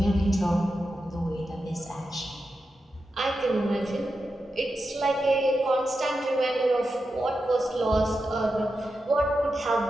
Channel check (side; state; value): both; normal; correlation 0.89